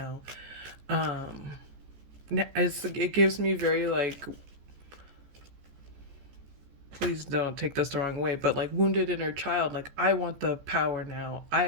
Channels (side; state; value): left; late; 14 ms